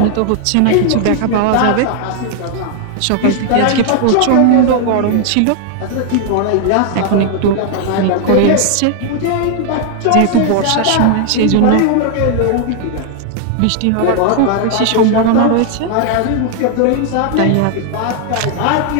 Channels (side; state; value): both; different; correlation 0.00